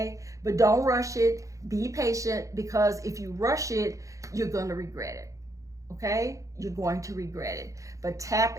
but don't rush it. Be patient, because if you rush it, you're going to regret it. Okay, you're going to regret it. But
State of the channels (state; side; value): late; left; 0.16 ms